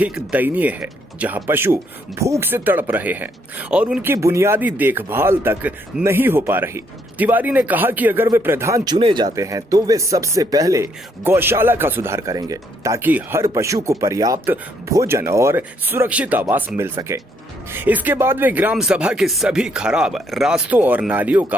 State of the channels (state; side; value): normal; both; correlation 0.71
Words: दयनीय है, जहां पशु भूख से तड़प रहे हैं और उनकी बुनियादी देखभाल तक नहीं हो पा रही। तिवारी ने कहा कि अगर वे प्रधान चुने जाते हैं तो वे सबसे पहले गौशाला का सुधार करेंगे ताकि हर पशु को पर्याप्त भोजन और सुरक्षित आवास मिल सके। इसके बाद वे ग्राम सभा के सभी खराब रास्तों और नालियों